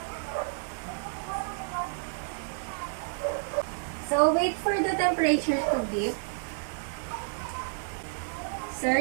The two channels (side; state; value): left; silent; digital silence